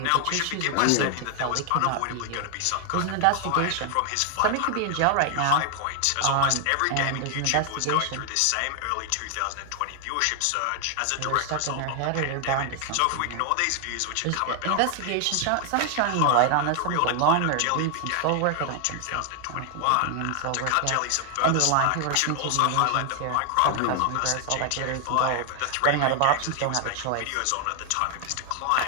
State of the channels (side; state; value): both; different; correlation 0.00